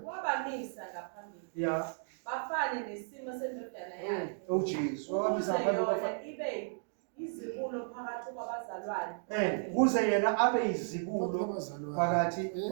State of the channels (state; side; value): silent; left; digital silence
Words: Wabamisa ngaphambili. Yeah. Bafane nesimo sendodana yakhe. Oh Jesus. Wabamisa ngaphambili Yona ibe izibulo phakathi kwabazalwane. Kuze yena abe izibulo phakathi